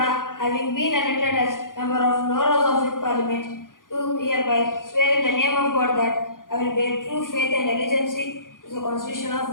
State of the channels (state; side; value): late; right; 0.89 ms